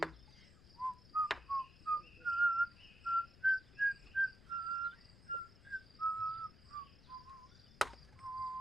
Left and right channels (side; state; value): left; noise; rumble, 21 dB below the sound